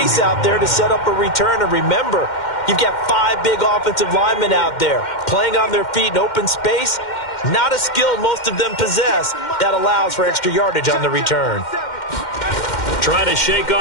out there to set up a return. And remember, you've got 5 big offensive linemen out there playing on their feet in open space. Not a skill most of them possess that allows for extra yardage on the return. Trying to shake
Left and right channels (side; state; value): right; late; 2.1 ms